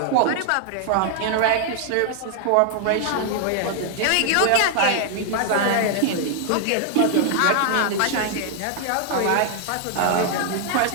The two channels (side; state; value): both; different; correlation 0.00